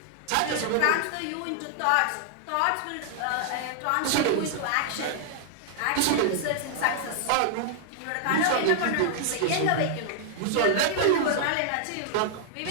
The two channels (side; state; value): both; different; correlation -0.01